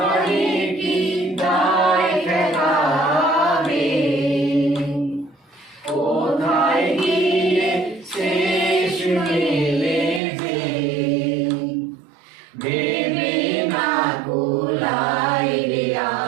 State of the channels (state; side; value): drops out; left; at 10.2 s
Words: কি দায় দেখাবে, কোথায় গিয়ে শেষ মেলে যে, ভেবে না কুলাই রে,